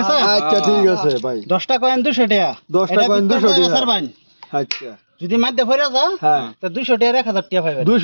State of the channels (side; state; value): both; inverted; correlation -1.00